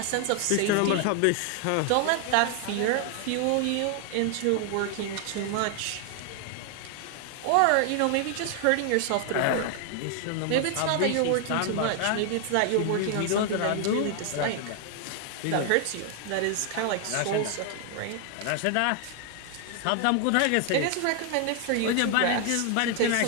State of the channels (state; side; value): different; both; correlation 0.00